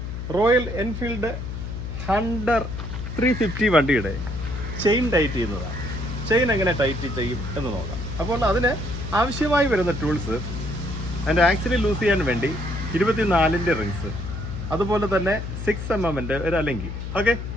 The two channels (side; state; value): left; noise; hum, 6 dB below the sound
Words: റോയൽ എൻഫീൽഡ് ഹണ്ടർ 350 വണ്ടിയുടെ ചെയിൻ ടൈറ്റ് ചെയ്യുന്നതാണ്. ചെയിൻ എങ്ങനെ ടൈറ്റ് ചെയ്യും എന്ന് നോക്കാം. അപ്പോൾ അതിന് ആവശ്യമായി വരുന്ന ടൂൾസ്, അതിൻ്റെ ആക്സിൽ ലൂസ് ചെയ്യാൻ വേണ്ടി 24-ൻ്റെ റിങ്സ്, അതുപോലെ തന്നെ 6 mm ഒരു അലങ്കി. ഓക്കെ,